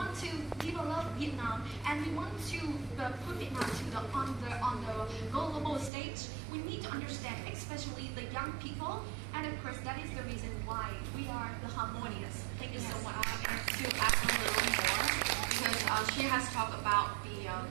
to develop Vietnam, and we want to put Vietnam on the global stage. We need to understand, especially the young people, and of course that is the reason why we are the Harmonious. Thank you so much. And to add a little more, because she has talked about the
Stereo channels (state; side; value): drops out; left; at 5.9 s